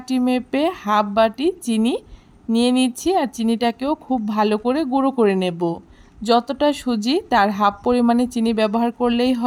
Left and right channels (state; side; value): identical; both; correlation 1.00